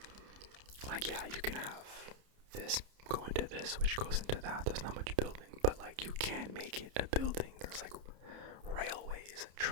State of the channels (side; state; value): left; late; 30 ms